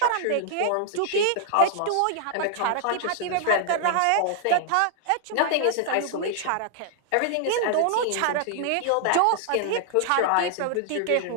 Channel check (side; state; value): both; different; correlation 0.00